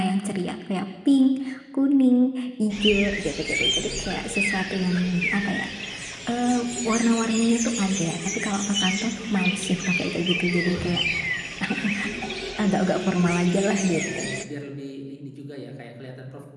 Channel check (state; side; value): identical; both; correlation 1.00